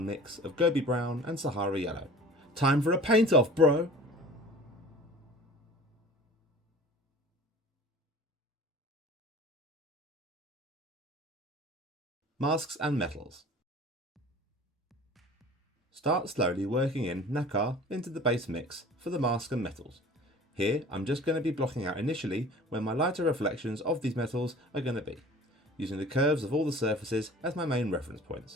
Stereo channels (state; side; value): normal; both; correlation 0.43